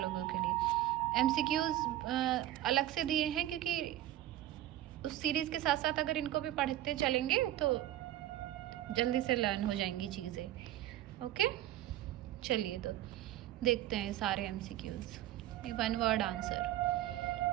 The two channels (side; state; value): left; quieter; 13.6 dB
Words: के लिए। एमसीक्यूज अलग से दिए हैं क्योंकि उस सीरीज़ के साथ साथ अगर इनको भी पढ़ते चलेंगे तो जल्दी से लर्न हो जाएंगी चीज़ें। ओके, चलिए तो देखते हैं सारे एमसीक्यूज। ये one word